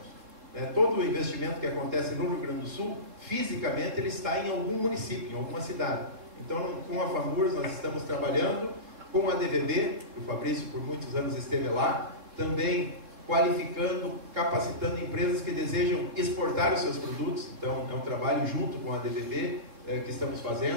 Todo o investimento que acontece no Rio Grande do Sul, fisicamente, ele está em algum município, em alguma cidade. Então, com a FAMURS, nós estamos trabalhando, com a DVB, que o Fabrício por muitos anos esteve lá, também qualificando, capacitando empresas que desejam exportar os seus produtos. Então, é um trabalho junto com a DVB que estamos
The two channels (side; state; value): left; late; 3.8 ms